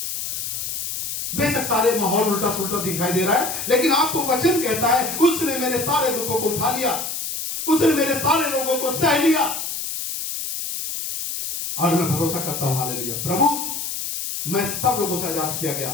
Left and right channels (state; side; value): noise; left; hiss, 4 dB below the sound